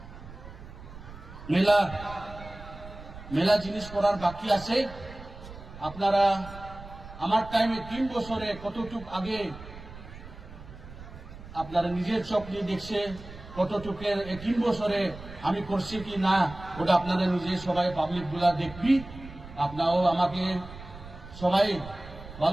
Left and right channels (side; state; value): right; noise; rumble, 15 dB below the sound